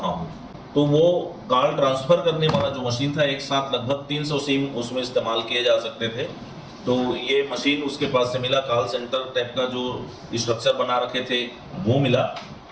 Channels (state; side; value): identical; both; correlation 1.00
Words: हूँ, तो वो कॉल ट्रांसफ़र करने वाला जो मशीन था, एक साथ लगभग 300 सिम उसमें इस्तेमाल किए जा सकते थे। तो ये मशीन उसके पास से मिला, कॉल सेंटर टाइप का जो स्ट्रक्चर बना रखे थे वो मिला।